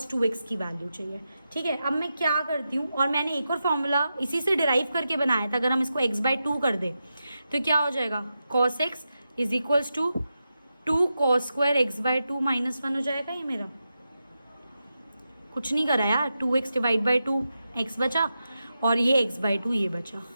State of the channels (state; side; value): inverted; both; correlation -0.89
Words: 2x की वैल्यू चाहिए, ठीक है। अब मैं क्या करती हूँ, और मैंने एक और फॉर्मूला इसी से डिराइव करके बनाया था, अगर हम इसको x बाई 2 कर दें तो क्या हो जाएगा cos x is equals to 2 cos square x by 2 minus 1 हो जाएगा। ये मेरा कुछ नहीं करा यार, 2x डिवाइड बाई 2 x बचा, और ये x बाई 2 ये बचा,